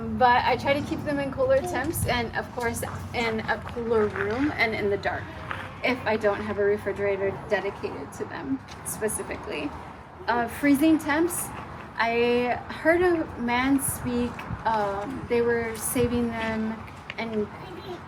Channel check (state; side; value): identical; both; correlation 1.00